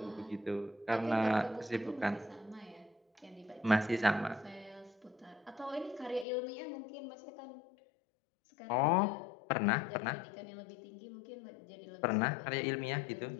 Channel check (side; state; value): right; drops out; at 6.2 s